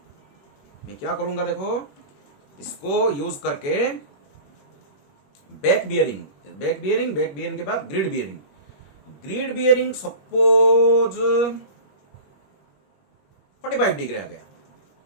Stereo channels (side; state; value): right; late; 21 ms